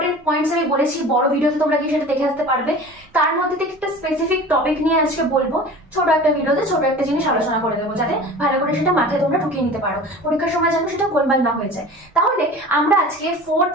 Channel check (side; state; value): both; normal; correlation 0.38